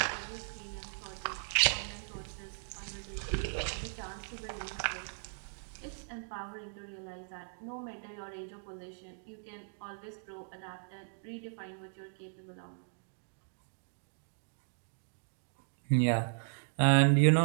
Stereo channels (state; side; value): silent; left; digital silence